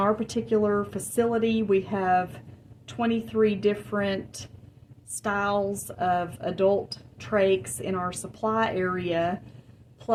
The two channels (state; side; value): identical; both; correlation 1.00